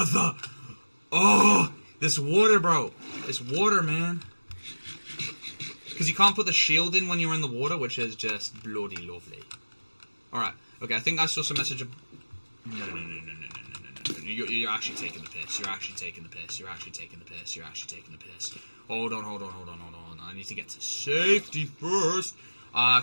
Oh! This water, bro. This water, man. Because you can't put the shield in when you're in the water, which is just bloody lovely. Alright. Okay, I think I saw some message of... No. You're actually taking the piss. You're actually taking the piss. Hold on. I need to get to safety first.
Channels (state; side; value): inverted; both; correlation -1.00